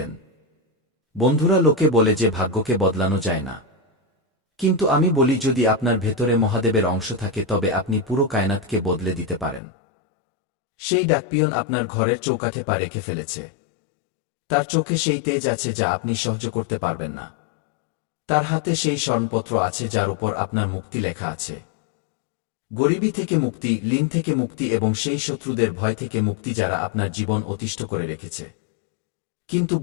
বন্ধুরা, লোকে বলে যে ভাগ্যকে বদলানো যায় না। কিন্তু আমি বলি, যদি আপনার ভেতরে মহাদেবের অংশ থাকে তবে আপনি পুরো কায়নাতকে বদলে দিতে পারেন। সেই ডাকপিয়ন আপনার ঘরের চৌকাঠে পা রেখে ফেলেছে। তার চোখে সেই তেজ আছে যা আপনি সহ্য করতে পারবেন না। তার হাতে সেই স্মরণপত্র আছে যার উপর আপনার মুক্তি লেখা আছে। গরিবী থেকে মুক্তি, ঋণ থেকে মুক্তি এবং সেই শত্রুদের ভয় থেকে মুক্তি যারা আপনার জীবন অতিষ্ঠ করে রেখেছে। কিন্তু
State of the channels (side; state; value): right; drops out; at 9.6 s